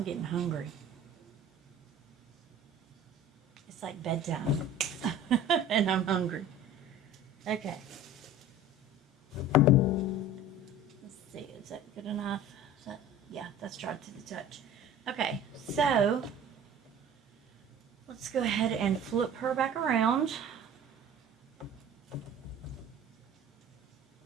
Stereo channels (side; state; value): both; normal; correlation 0.41